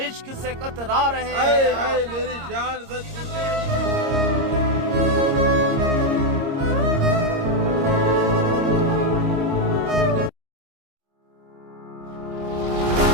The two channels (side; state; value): left; late; 26 ms